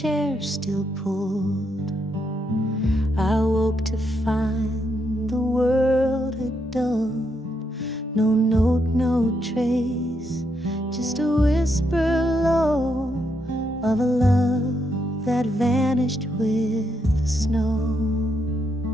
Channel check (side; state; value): both; normal; correlation 0.79